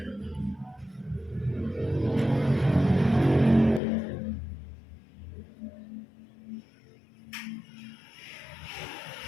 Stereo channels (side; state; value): right; drops out; at 3.8 s